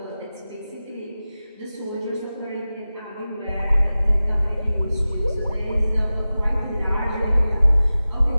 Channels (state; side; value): inverted; both; correlation -0.95